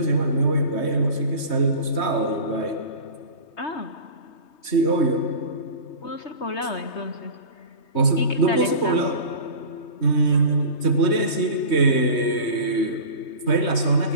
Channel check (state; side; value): late; right; 3.2 ms